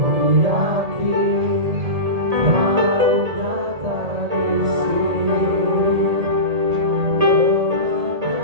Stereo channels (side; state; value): left; late; 1.8 ms